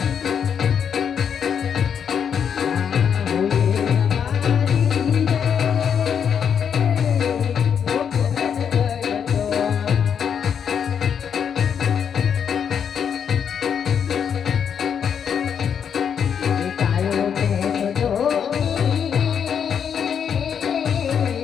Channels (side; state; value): right; quieter; 7.7 dB